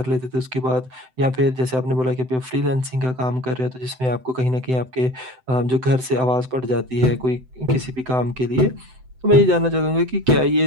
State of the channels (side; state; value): left; late; 7.8 ms